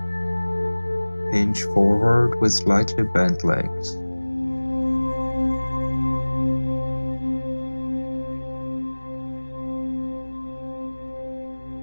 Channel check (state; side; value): inverted; both; correlation -1.00